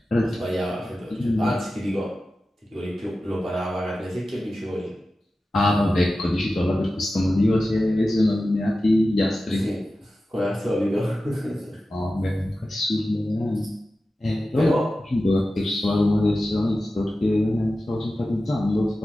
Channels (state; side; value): normal; both; correlation 0.94